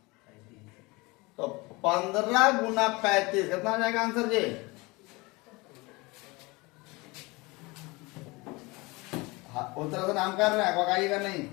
तो 15 गुना 35 कितना हो जाएगा आंसर जी। उस तरह से नाम कर रहे हैं पकाइएगा नहीं।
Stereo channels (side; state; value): right; quieter; 24.5 dB